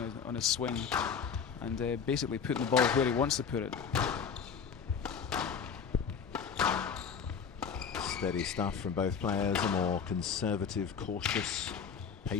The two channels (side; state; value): right; quieter; 6.5 dB